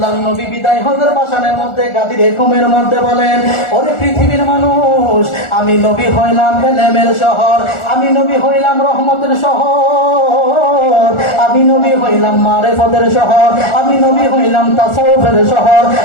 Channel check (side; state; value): right; late; 1.4 ms